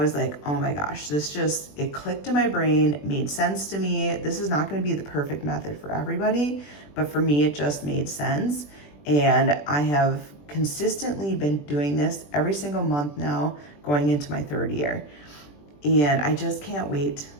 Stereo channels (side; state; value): right; late; 20 ms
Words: like, oh my gosh, it clicked in my brain, made sense to me. This is not going to be the perfect method for everybody, but for me, it just made sense. And I have consistently been doing this every single month now, going into my 3rd year. And I just can't wait